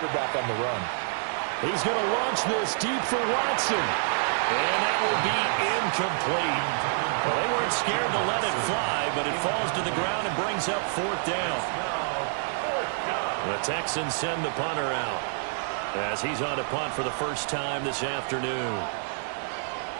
on the run. He's going to launch this deep for Watson. And that will be incomplete. Well, they weren't scared to let it fly, but it falls to the ground and brings up fourth down. The Texans send the punter out as he's on to punt for the first time this afternoon.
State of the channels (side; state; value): left; silent; digital silence